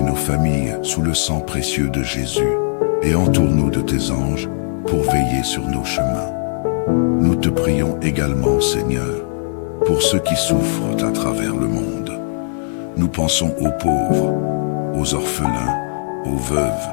nos familles sous le sang précieux de Jésus et entoure-nous de tes anges pour veiller sur nos chemins. Nous te prions également, Seigneur, pour ceux qui souffrent à travers le monde. Nous pensons aux pauvres, aux orphelins, aux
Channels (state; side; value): silent; right; digital silence